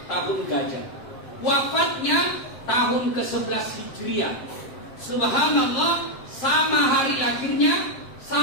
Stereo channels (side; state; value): right; late; 7.7 ms